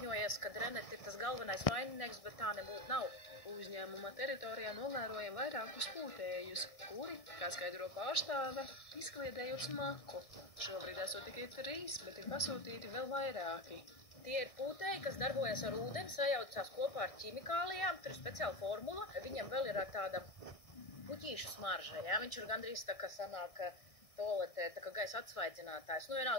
ka Rennet ir tas galvenais vaininieks, bet tā nebūtu nav. Uzņēmuma teritorijā novērojam vairākus pūtējus, kuri, kā skaidro pārstāve, izkliedējot smaku. Šobrīd esot tikai 3, bet ir pasūtīti vēl vairāki. Tie ir pūtēji, kas darbojas ar ūdeni, sajaucās kopā ar ķimikālijām, tur ir speciāla formula. Viņam vēl ir tāda puķīšu smarža, jā? Viņš ir gandrīz tā, ka sanāk toaletē, tā kā gaisa atsvaidzinātājs. Nu,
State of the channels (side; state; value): right; late; 1.6 ms